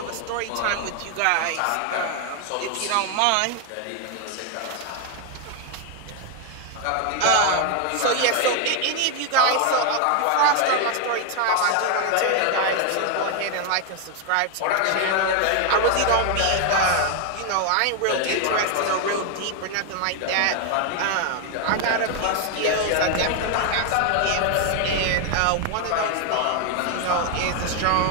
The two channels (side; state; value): both; different; correlation 0.01